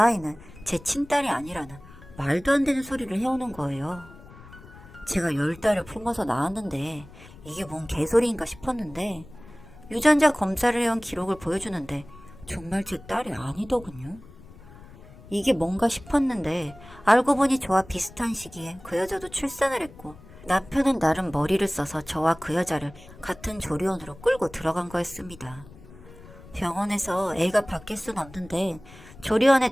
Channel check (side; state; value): left; noise; rumble, 20 dB below the sound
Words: 제 친딸이 아니라는 말도 안 되는 소리를 해오는 거예요. 제가 10달을 품어서 낳았는데 이게 뭔 개소리인가 싶었는데 유전자 검사를 해온 기록을 보여주는데 정말 제 딸이 아니더군요. 이게 뭔가 싶었는데 알고 보니 저와 비슷한 시기에 그 여자도 출산을 했고 남편은 나름 머리를 써서 저와 그 여자를 같은 조리원으로 끌고 들어간 거였습니다. 병원에서 애가 바뀔 순 없는데 조리원에